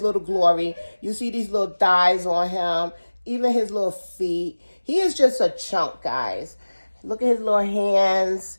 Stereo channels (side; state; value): both; inverted; correlation -1.00